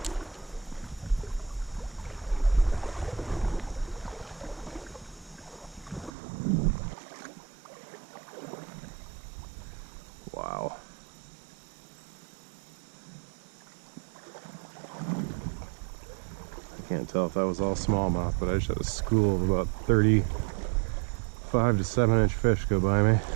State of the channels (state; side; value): drops out; left; at 6.1 s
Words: Wow. Can't tell if that was all smallmouth, but I just had a school of about 35 to 7-inch fish go by me.